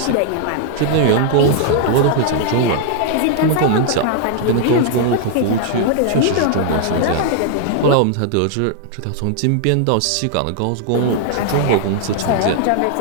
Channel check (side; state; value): both; different; correlation -0.01